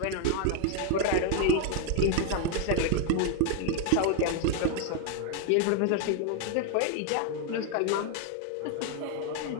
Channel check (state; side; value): different; both; correlation 0.00